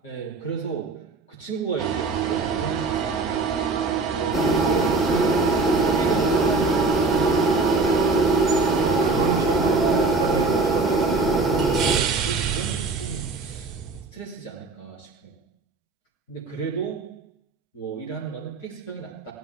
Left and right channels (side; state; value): left; quieter; 3.7 dB